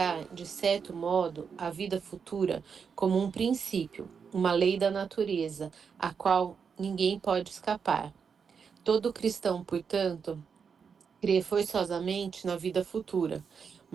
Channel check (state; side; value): quieter; left; 6.3 dB